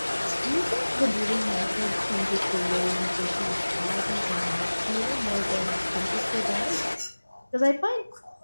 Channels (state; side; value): inverted; both; correlation -1.00